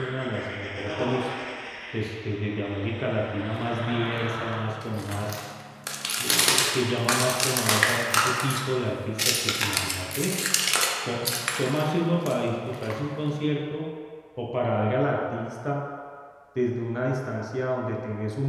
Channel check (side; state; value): both; identical; correlation 1.00